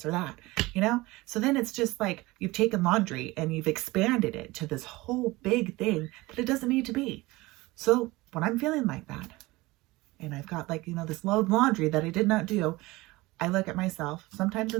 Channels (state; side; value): quieter; left; 20.9 dB